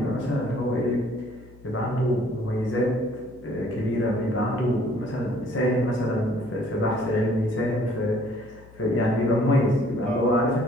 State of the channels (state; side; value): noise; left; hum, 23 dB below the sound